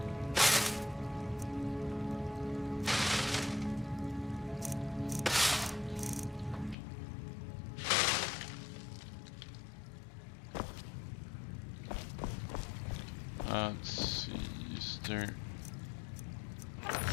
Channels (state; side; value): drops out; right; at 6.8 s